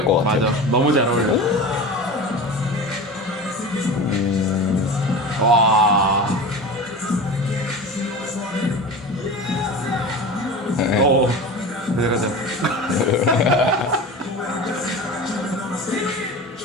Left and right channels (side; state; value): both; normal; correlation 0.31